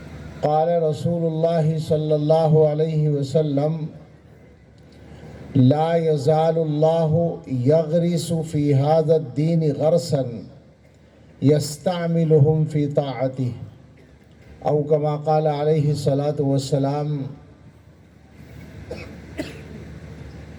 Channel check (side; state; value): both; identical; correlation 1.00